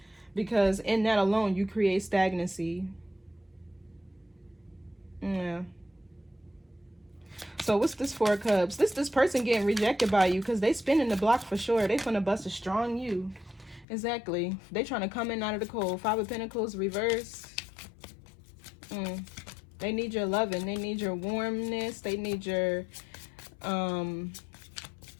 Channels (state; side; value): drops out; right; at 13.9 s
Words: because in that alone you create stagnancy. Yeah. So what's this 4 of Cups? This person getting rejected by you because they spinning the block for sure. They finna bust a strong you. Exactly. They trying to come in out of the cold. 5 of Pentacles reverse. They need your loving. They need your warmness. They need your